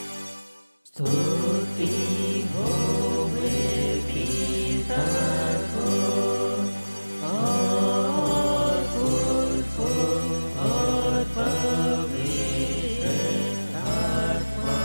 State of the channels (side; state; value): both; inverted; correlation -1.00